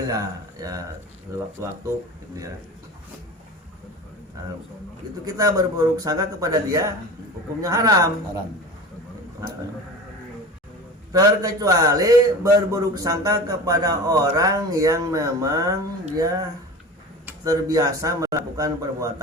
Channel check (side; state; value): both; normal; correlation 0.34